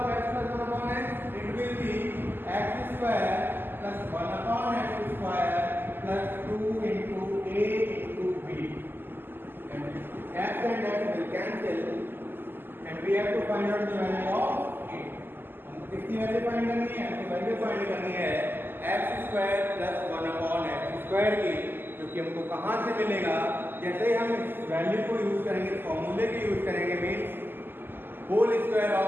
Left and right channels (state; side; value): late; left; 0.096 ms